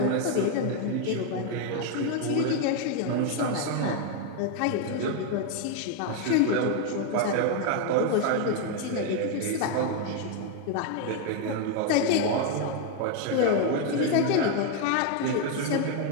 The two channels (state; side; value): different; both; correlation 0.01